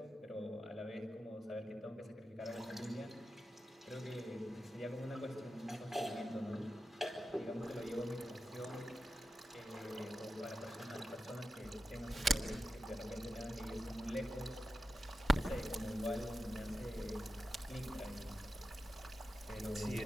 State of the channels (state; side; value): normal; both; correlation 0.90